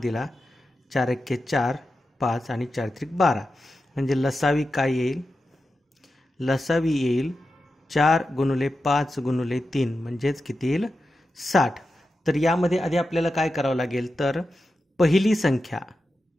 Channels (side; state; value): both; normal; correlation 0.91